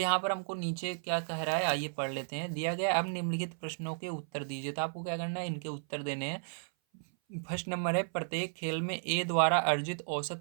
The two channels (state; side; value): silent; left; 55 dB below the other